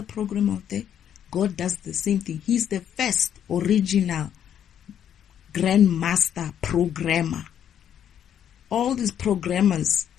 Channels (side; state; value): right; quieter; 9.5 dB